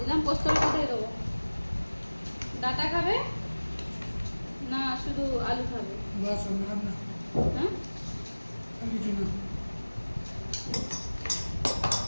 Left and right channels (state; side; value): inverted; both; correlation -1.00